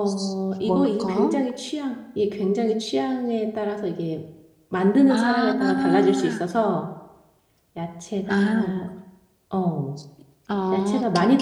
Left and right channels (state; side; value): identical; both; correlation 1.00